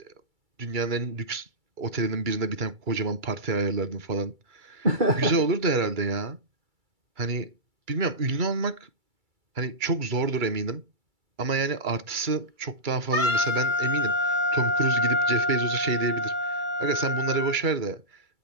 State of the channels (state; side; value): late; left; 2.3 ms